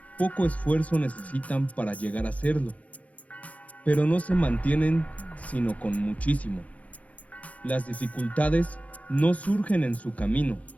poco esfuerzo necesitan para llegar a serlo, pero no se mantienen sino con muchísimo. Las dificultades no surgen en su camino,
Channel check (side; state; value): right; late; 0.068 ms